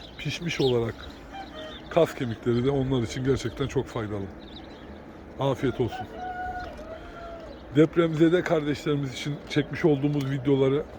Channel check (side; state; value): both; identical; correlation 1.00